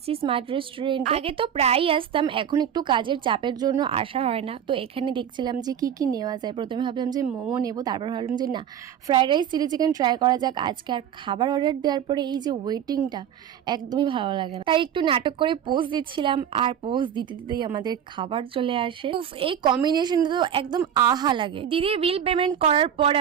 স্মার্ট রেস্টুরেন্ট। আগে তো প্রায়ই আসতাম, এখন একটু কাজের চাপের জন্য আসা হয় না। তো এখানে দেখছিলাম যে কি কি নেওয়া যায়। প্রথমে ভাবলাম যে মোমো নেবো, তারপর ভাবলাম যে না, fried rice chilli chicken try করা যাক আজকে। আর খাবার অর্ডার দেওয়ার পরে এই যে ওয়েটিংটা একদমই ভালো লাগে না, তাই একটু নাটক করে পোজ দিচ্ছিলাম। আর পোজ দিতে দিতেই আমাদের খাবার চলে আসে। উফ, এই কম্বিনেশনটা তো একদম আহা লাগে। দিদির বিল পেমেন্ট করার পর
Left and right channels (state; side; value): quieter; left; 9.2 dB